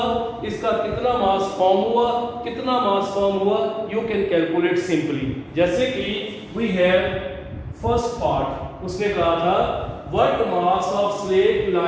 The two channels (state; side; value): identical; both; correlation 1.00